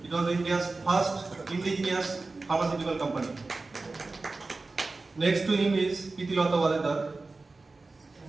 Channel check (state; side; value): quieter; left; 3.5 dB